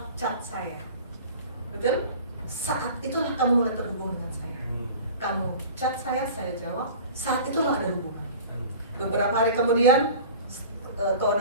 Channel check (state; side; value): inverted; both; correlation -0.40